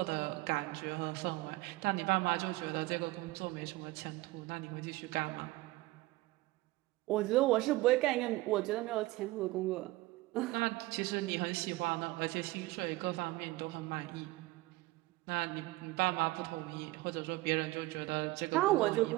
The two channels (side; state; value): left; quieter; 19.8 dB